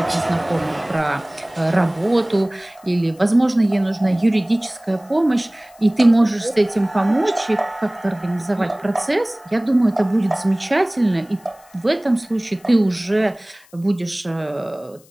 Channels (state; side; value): noise; left; hiss, 28 dB below the sound